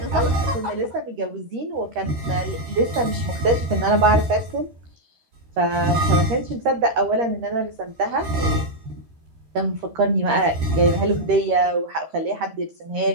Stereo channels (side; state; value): left; late; 13 ms